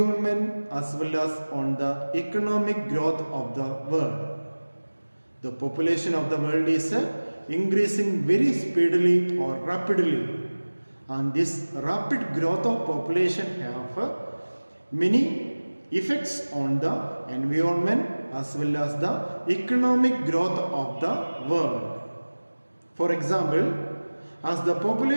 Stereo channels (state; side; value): inverted; both; correlation -1.00